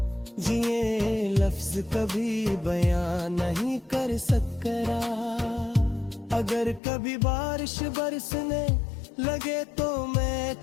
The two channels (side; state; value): right; drops out; at 6.8 s